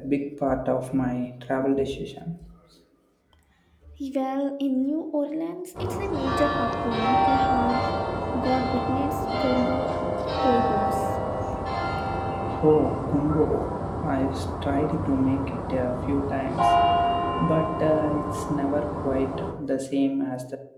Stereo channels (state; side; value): identical; both; correlation 1.00